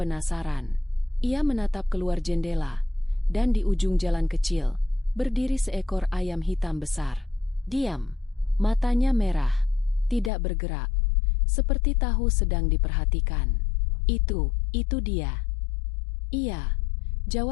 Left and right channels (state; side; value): drops out; right; at 10.3 s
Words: Ia menatap keluar jendela, dan di ujung jalan kecil, berdiri seekor ayam hitam besar. Diam, matanya merah, tidak bergerak, seperti tahu sedang diperhatikan. Itu dia." "Iya,"